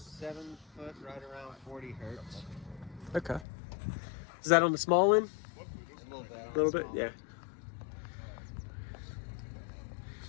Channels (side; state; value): right; drops out; at 3.5 s